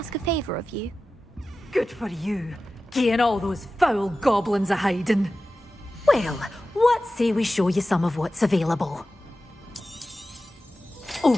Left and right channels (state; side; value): normal; both; correlation 0.94